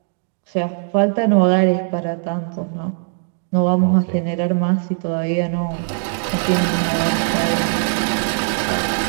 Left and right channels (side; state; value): left; silent; digital silence